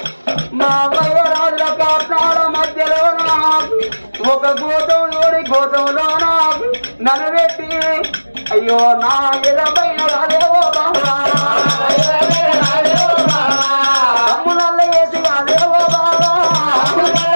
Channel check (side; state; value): both; inverted; correlation -1.00